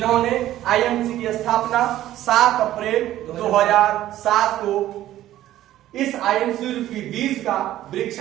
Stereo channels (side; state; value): left; quieter; 13.6 dB